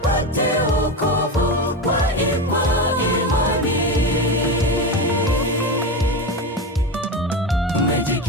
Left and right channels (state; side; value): normal; both; correlation 0.18